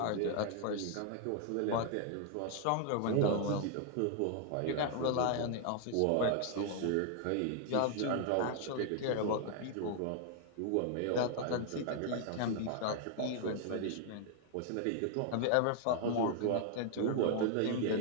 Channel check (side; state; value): both; different; correlation 0.00